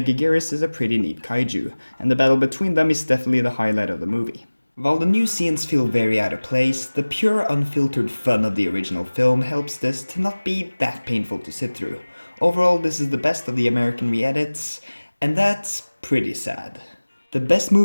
is a pretty neat kaiju, and the battle between them is definitely the highlight of the movie. While the new scenes feel very out of place, the pure unfiltered fun of the original film helps this to not be that painful to sit through. Overall, this is the best of the American re-edits, and that's pretty sad. The best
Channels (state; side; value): inverted; both; correlation -1.00